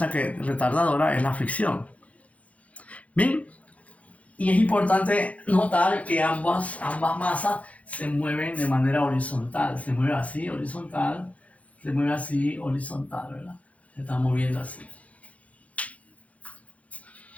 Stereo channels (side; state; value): right; late; 0.067 ms